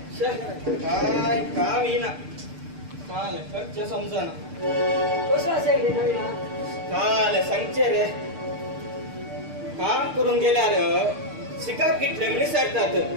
काय काम येईना काल खर्च समजना कसं असाय रे नवीना काल सांगचे रे काम करून गेल्यार शिकाप कितले मनीस सरतात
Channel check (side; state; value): left; late; 6.7 ms